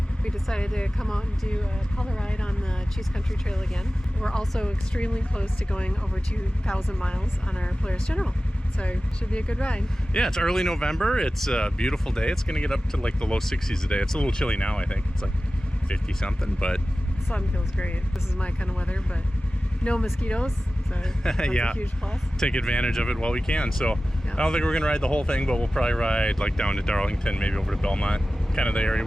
we decided to come out and do a color ride on the Cheese Country Trail again. We're also extremely close to going over 2,000 miles on our Polaris General. So it should be a good ride. Yeah, it's early November. It's a beautiful day. It's going to get up to like the low 60s a day. It's a little chilly now, I think. It's like 50 something, but The sun feels great. This is my kind of weather, but no mosquitoes, so that's yeah, a huge plus. Take advantage of it while we can. So Yeah. I don't think we're going to ride the whole thing, but we'll probably ride like down to Darlington, maybe over to Belmont, kind of the area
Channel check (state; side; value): normal; both; correlation 0.96